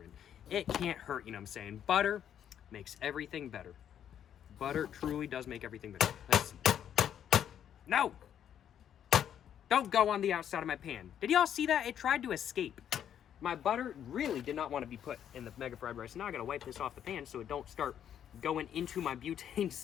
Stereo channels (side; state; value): right; quieter; 9.5 dB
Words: in. It can't hurt, you know what I'm saying? Butter makes everything better. Butter truly does make everything better. Let's... No! Don't go on the outside of my pan. Did y'all see that? It tried to escape. My butter really did not want to be put in the mega fried rice. Now I gotta wipe this off the pan so it don't start going into my butane